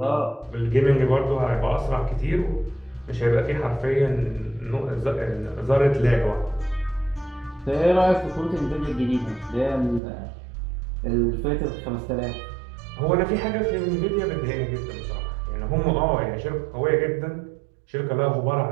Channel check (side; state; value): left; drops out; at 10.0 s